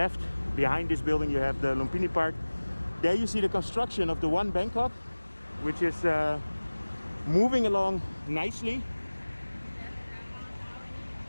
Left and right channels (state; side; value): inverted; both; correlation -1.00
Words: behind this building you have the Lumpini Park. There you see the construction of the One Bangkok, which is moving along nicely.